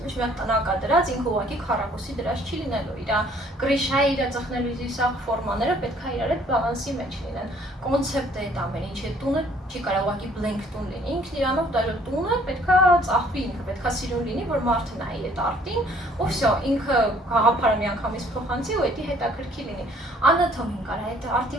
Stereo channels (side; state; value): both; normal; correlation 0.59